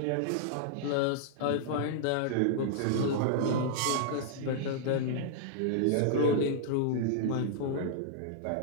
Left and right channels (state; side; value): different; both; correlation -0.01